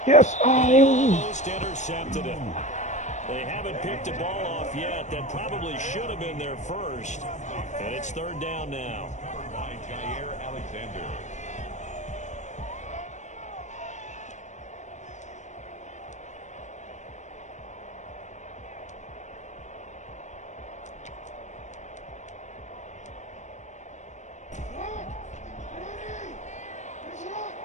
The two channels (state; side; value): late; right; 0.34 ms